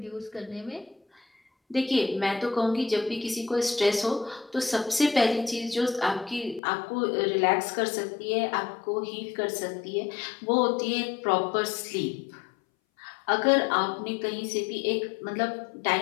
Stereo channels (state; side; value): drops out; right; at 6.6 s